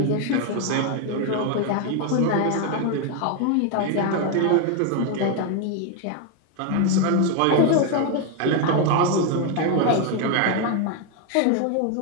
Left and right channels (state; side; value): different; both; correlation 0.01